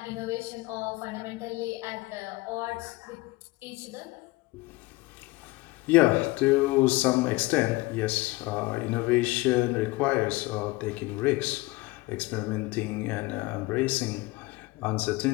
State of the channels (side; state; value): right; quieter; 21.8 dB